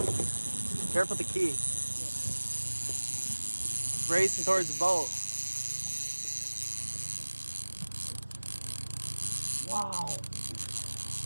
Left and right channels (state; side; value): inverted; both; correlation -1.00